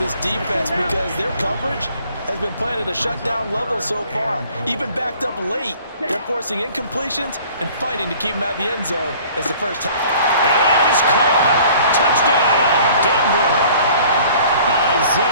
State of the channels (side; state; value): both; inverted; correlation -0.51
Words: defense because their coverage has been playing at a shutdown level so far. Even backed up late, they're forcing incompletions and fighting to keep them out of the end zone as the first. And that is caught. Touchdown, Denver.